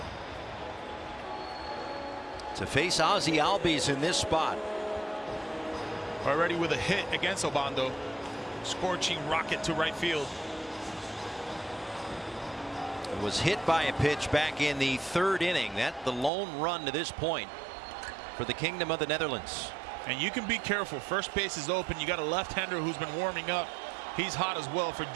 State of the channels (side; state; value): left; drops out; at 16.3 s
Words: To face Ozzy Albies in this spot. Already with a hit against Obando. Scorching rocket to right field. It was hit by a pitch back in the 3rd inning. That's the lone run to this point for the Kingdom of the Netherlands. And you can be careful. First base is open. You got a left-hander who's been warming up. He's hot as well for